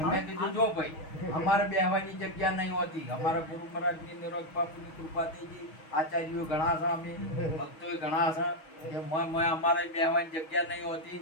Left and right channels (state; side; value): late; right; 6.3 ms